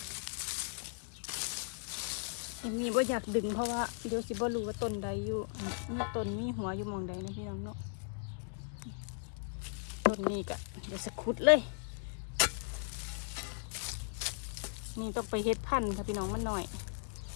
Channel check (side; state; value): right; silent; digital silence